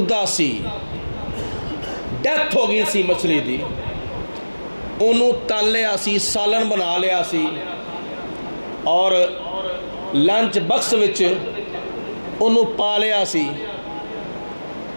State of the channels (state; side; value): inverted; both; correlation -1.00